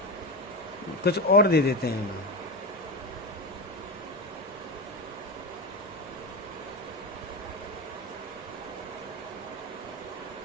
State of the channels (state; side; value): normal; both; correlation 0.18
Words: कुछ और दे देते हैं ना,